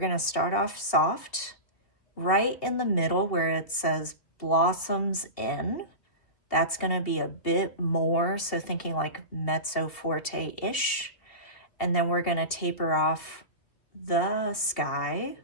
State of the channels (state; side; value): late; right; 2.8 ms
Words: to start off soft, right in the middle where it says blossoms in. That's going to be a bit more, so thinking like mezzo forte-ish. And then we're going to taper off. The sky